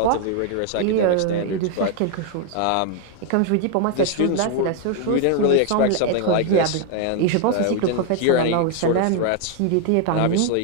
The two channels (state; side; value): different; both; correlation 0.00